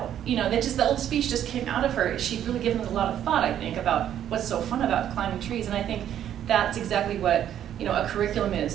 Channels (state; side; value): quieter; left; 10.5 dB